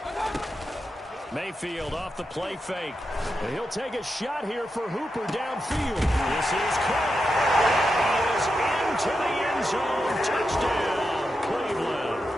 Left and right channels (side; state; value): both; normal; correlation 0.87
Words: Mayfield off the play fake. And he'll take a shot here for Hooper downfield. This is caught. He is into the end zone. Touchdown, Cleveland.